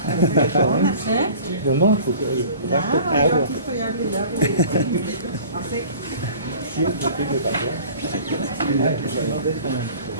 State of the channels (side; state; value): both; inverted; correlation -0.45